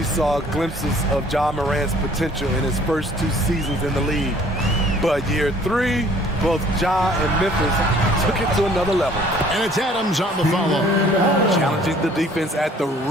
saw glimpses of Ja Morant's potential in his first 2 seasons in the league. But year 3, both Ja and Memphis took it to another level. And it's Adams on the follow. Challenging the defense at the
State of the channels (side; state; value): both; normal; correlation 0.55